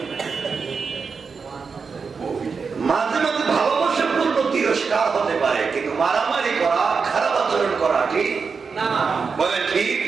মাঝে মাঝে ভালোবাসা পূর্ণ তিরস্কার হতে পারে কিন্তু মারামারি করা খারাপ আচরণ করা ঠিক না বলে ঠিক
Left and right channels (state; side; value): quieter; left; 5.3 dB